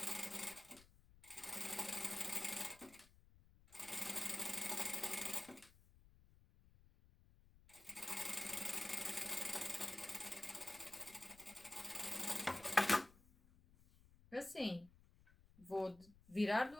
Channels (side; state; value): left; noise; rumble, 25 dB below the sound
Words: Assim, vou virar do